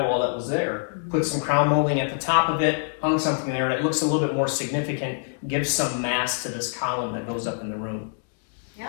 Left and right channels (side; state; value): right; silent; digital silence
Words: that was there. Put some crown molding at the top of it, hung something there, and it looks a little bit more significant, gives some mass to this column that goes up in the room.